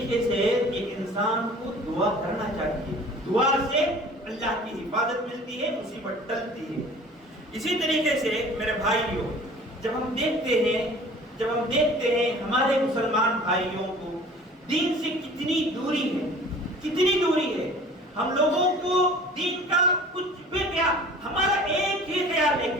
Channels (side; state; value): both; normal; correlation 0.46